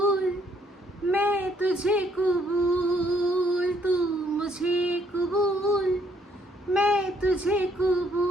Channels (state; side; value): normal; both; correlation 0.67